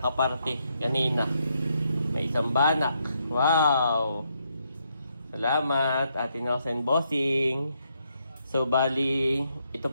kanina. May isang banak. Wow! Salamat, Ate Nelson Bossing. So, bali, ito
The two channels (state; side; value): inverted; both; correlation -0.77